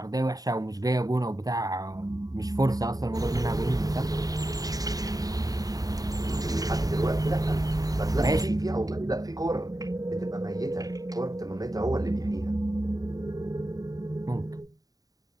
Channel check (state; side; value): late; left; 0.18 ms